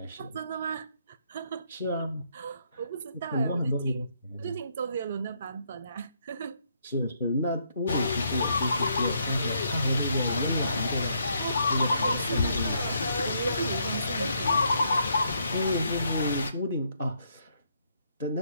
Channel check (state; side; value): inverted; both; correlation -0.73